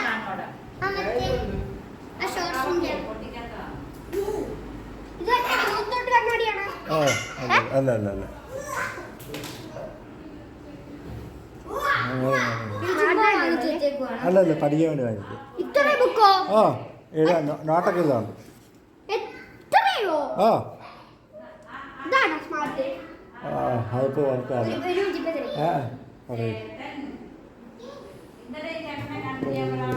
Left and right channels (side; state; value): both; identical; correlation 1.00